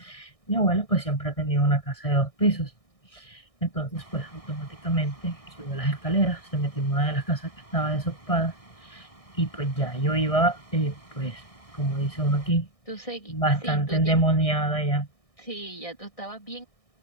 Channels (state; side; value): late; right; 1.6 ms